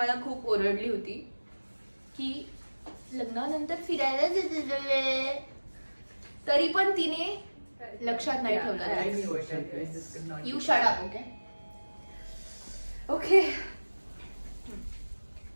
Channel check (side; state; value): both; inverted; correlation -1.00